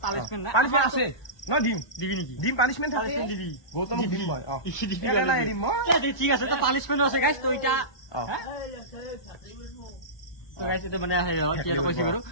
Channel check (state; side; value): late; right; 1.2 ms